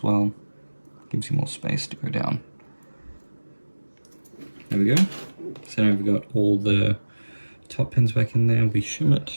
well. Gives you more space to go down. There we go. So now we've got all the top pins back in there. We shim it.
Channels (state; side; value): inverted; both; correlation -1.00